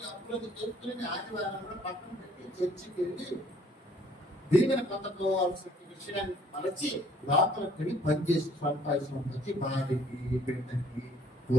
అప్పులకు చేసుకుని ఆదివారం కూడా పక్కన పెట్టి చర్చికి వెళ్ళి దీవెన పొందుకోవాల్సిన విషయాన్ని మరచి లోపలికి వెళ్ళి పనిచేసి సంపాదించి భార్యకి బిడ్డకి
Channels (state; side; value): normal; both; correlation 0.60